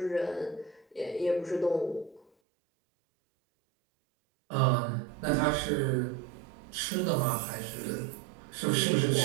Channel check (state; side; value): drops out; left; at 2.2 s